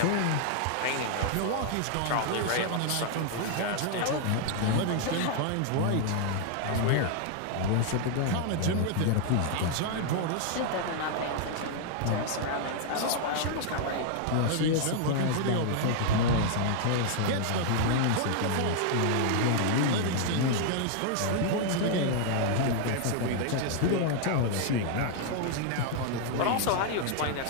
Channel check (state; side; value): different; both; correlation 0.00